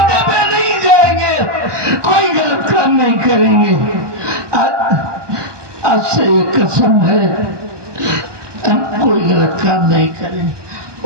पे नहीं जाएंगे, कोई गलत काम नहीं करेंगे। आज से ये कसम है, हम कोई गलत काम नहीं करेंगे।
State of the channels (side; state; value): left; late; 1.2 ms